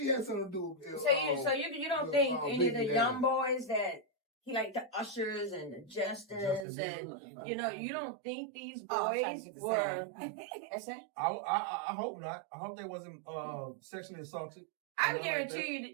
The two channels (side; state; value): left; drops out; at 6.7 s